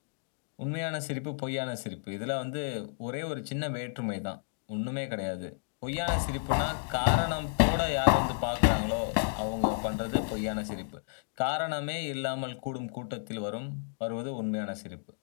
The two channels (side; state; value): right; silent; digital silence